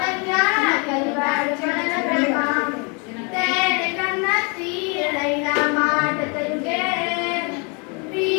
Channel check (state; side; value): quieter; right; 33.4 dB